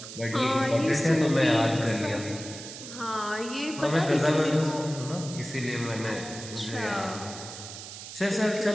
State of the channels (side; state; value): right; noise; hiss, 12 dB below the sound